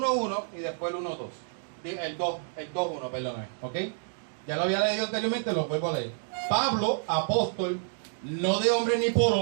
y después el 1.2. El 2.1, perdóname. ¿Ok? Ya lo había leído anteriormente, lo vuelvo a leer. Pablo, apóstol, no de hombre ni por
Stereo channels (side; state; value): left; silent; digital silence